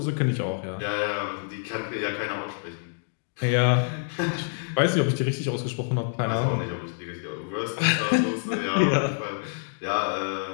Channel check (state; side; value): silent; right; digital silence